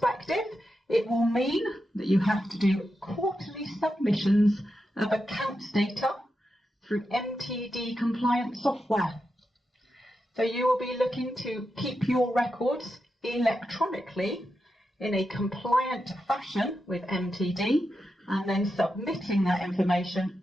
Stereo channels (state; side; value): normal; both; correlation 0.88